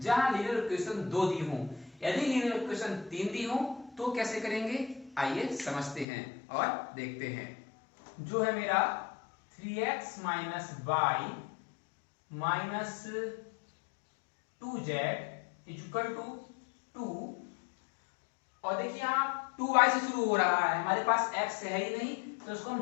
जहां लीनियर इक्वेशन 2 दी हो। यदि लीनियर इक्वेशन 3 दी हो तो कैसे करेंगे, आइए समझते हैं और देखते हैं। जो है मेरा 3x - y - 2z = 2, और देखिए यहां 2y से शुरू हो रहा है, हमारे पास x है ही नहीं तो इसको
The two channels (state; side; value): drops out; right; at 6.1 s